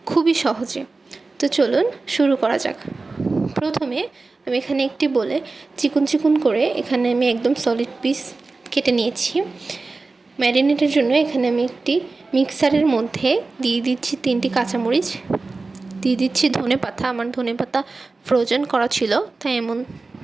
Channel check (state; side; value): quieter; left; 3.7 dB